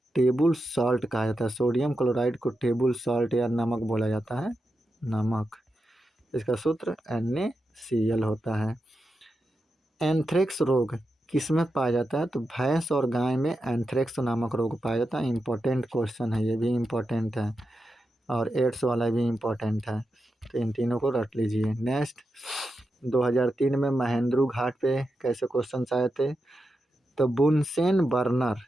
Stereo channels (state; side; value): normal; both; correlation 0.88